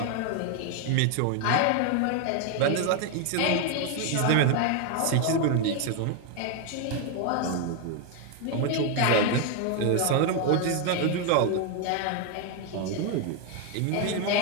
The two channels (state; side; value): different; both; correlation 0.01